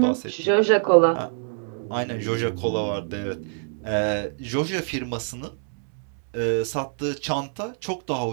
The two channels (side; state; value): left; silent; digital silence